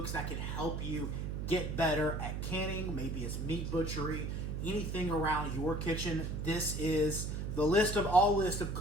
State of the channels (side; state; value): right; noise; hum, 3 dB below the sound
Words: that can help you get better at canning. Maybe it's meat butchery, anything around your kitchen. This is the list of